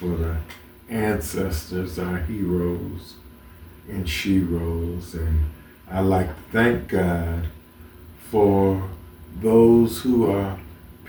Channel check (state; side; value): identical; both; correlation 1.00